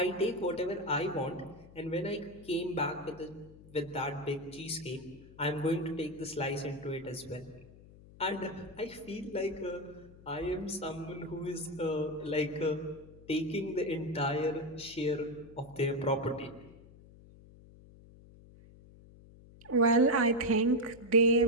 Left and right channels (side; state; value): left; noise; hum, 21 dB below the sound